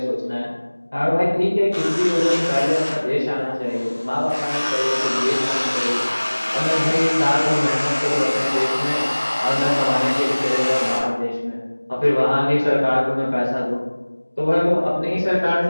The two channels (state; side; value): inverted; both; correlation -1.00